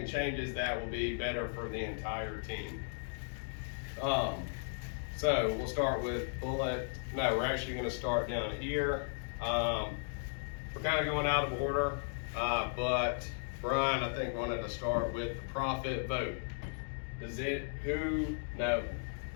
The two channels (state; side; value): silent; right; digital silence